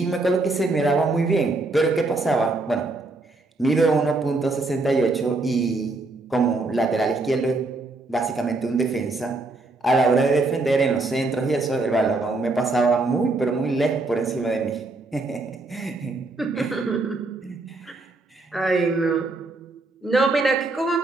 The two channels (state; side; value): quieter; left; 3.2 dB